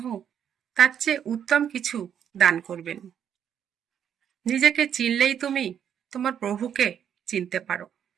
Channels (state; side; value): quieter; left; 8.9 dB